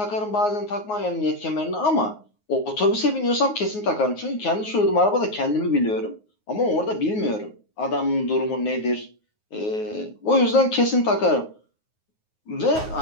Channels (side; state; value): right; late; 9.5 ms